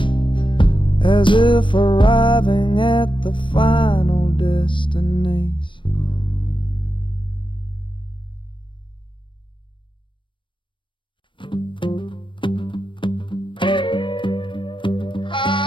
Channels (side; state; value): right; late; 0.24 ms